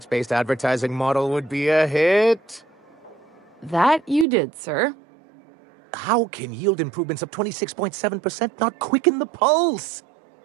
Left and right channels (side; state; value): left; drops out; at 4.2 s